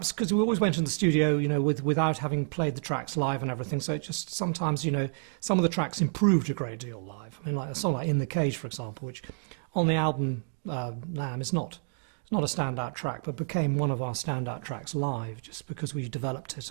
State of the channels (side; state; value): left; silent; digital silence